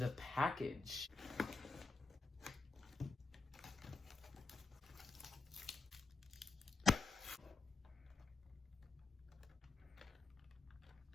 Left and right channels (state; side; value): quieter; right; 3.9 dB